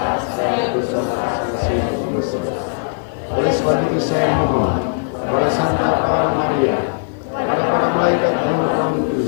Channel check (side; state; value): right; silent; digital silence